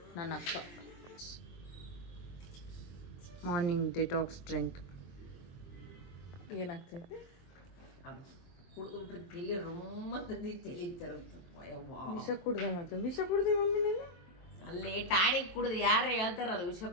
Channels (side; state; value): right; late; 23 ms